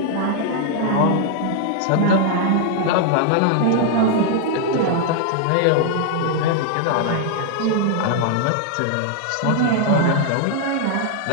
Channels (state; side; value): different; both; correlation -0.01